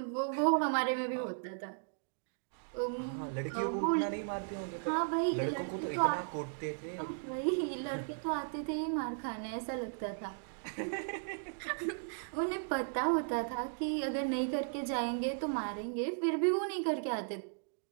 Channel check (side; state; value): left; silent; digital silence